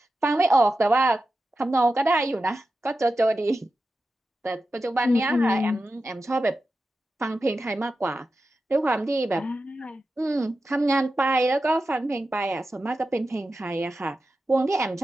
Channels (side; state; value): both; normal; correlation 0.92